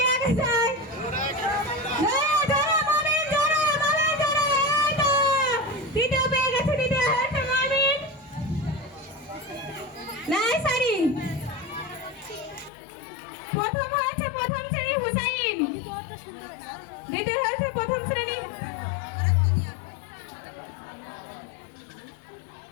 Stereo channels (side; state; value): right; drops out; at 12.7 s